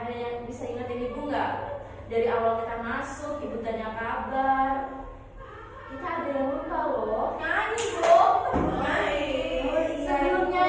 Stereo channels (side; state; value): both; identical; correlation 1.00